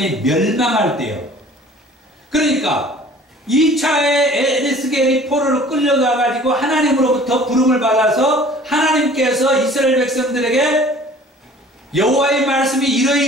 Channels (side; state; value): both; normal; correlation 0.49